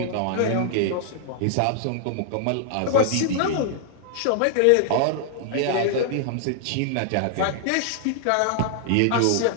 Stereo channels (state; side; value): different; both; correlation -0.01